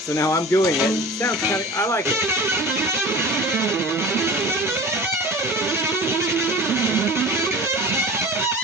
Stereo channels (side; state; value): both; normal; correlation 0.37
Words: now I'm doing it. It sounds kind of, I like it.